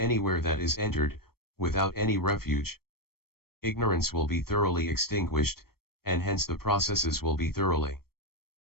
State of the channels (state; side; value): late; right; 0.94 ms